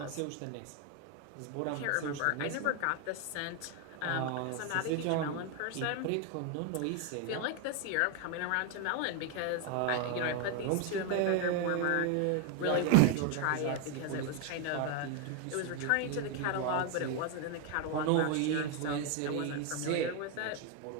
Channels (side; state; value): both; different; correlation 0.01